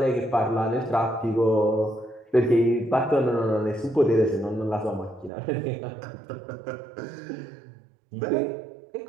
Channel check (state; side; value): drops out; left; at 5.3 s